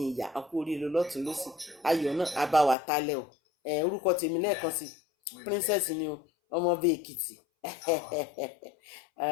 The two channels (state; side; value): drops out; right; at 2.8 s